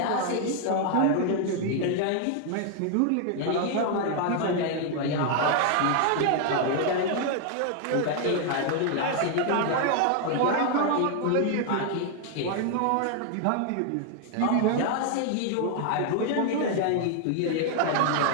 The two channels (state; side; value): different; both; correlation 0.00